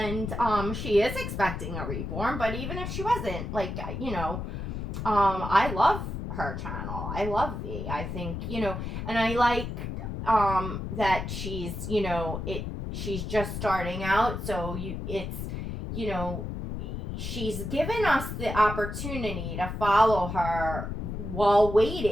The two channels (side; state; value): left; noise; rumble, 5 dB below the sound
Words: she is expecting a reborn, but even if she wasn't, like, you know, I love her channel. I love V. I think, you know, and I like that she's, you know, she's just starting out, so it's, you know, she's given us the opportunity to follow her while